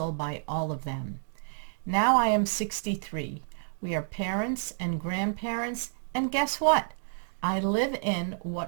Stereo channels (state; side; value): silent; left; digital silence